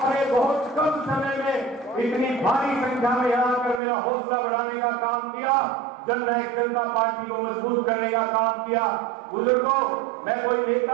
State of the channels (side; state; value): left; drops out; at 3.8 s